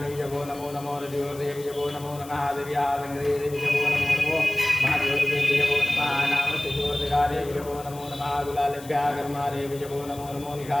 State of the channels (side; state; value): left; noise; hiss, 18 dB below the sound